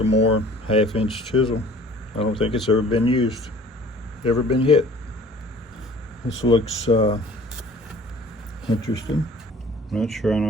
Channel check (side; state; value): both; normal; correlation 0.49